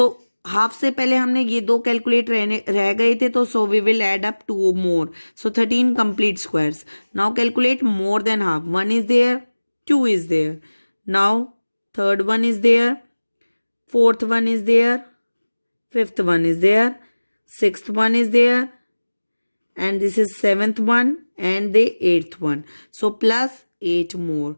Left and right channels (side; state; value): both; inverted; correlation -1.00